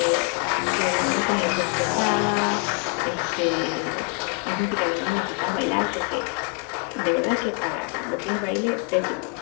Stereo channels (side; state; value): right; quieter; 32.3 dB